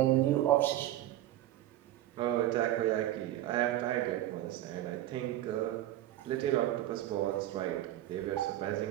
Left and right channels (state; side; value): quieter; left; 14.0 dB